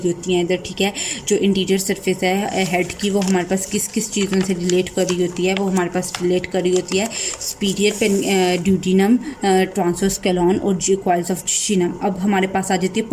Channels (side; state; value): both; identical; correlation 1.00